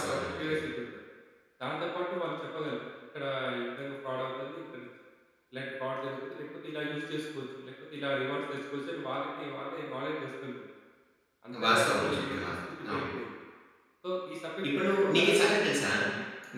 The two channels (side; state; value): both; identical; correlation 1.00